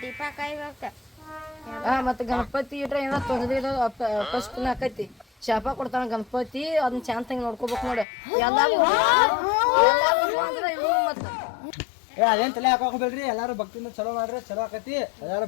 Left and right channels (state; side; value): drops out; right; at 8.1 s